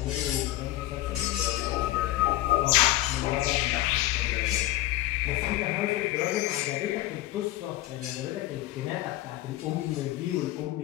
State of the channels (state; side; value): quieter; right; 16.1 dB